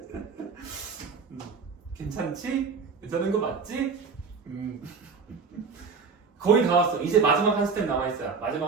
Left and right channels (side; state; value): left; quieter; 5.2 dB